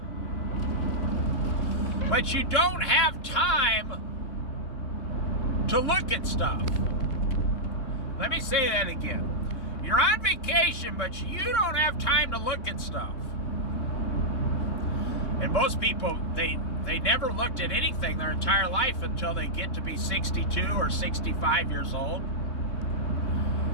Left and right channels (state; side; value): late; right; 3.7 ms